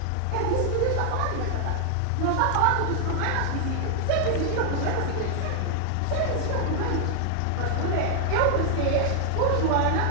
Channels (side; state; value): both; different; correlation 0.00